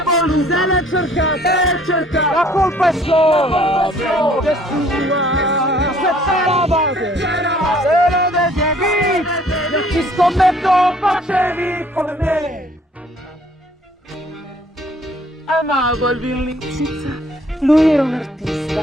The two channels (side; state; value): both; normal; correlation 0.58